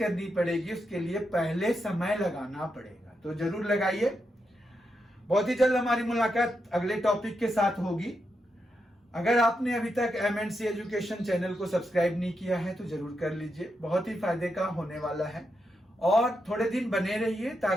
पड़ेगी, उसके लिए पहले समय लगाना पड़ेगा। तो जरूर लगाइए। बहुत ही जल्द हमारी मुलाकात अगले टॉपिक के साथ होगी। अगर आपने अभी तक MNC एजुकेशन चैनल को सब्सक्राइब नहीं किया है तो जरूर कर लीजिए, बहुत ही फायदे का होने वाला है। और थोड़े दिन बने रहिए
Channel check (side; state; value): both; normal; correlation 0.84